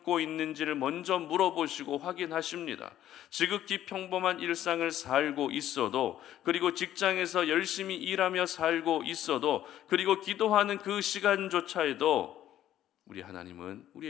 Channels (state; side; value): quieter; right; 12.1 dB